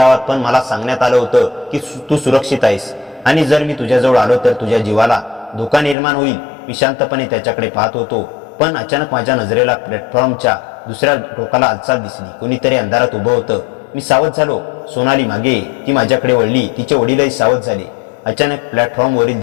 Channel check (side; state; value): right; drops out; at 6.0 s